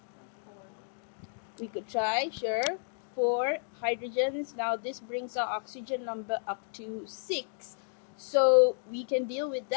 We could try, sure. 4 hydrogens. Now this brings our oxygen number up to 6. So we can deal with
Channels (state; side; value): silent; right; digital silence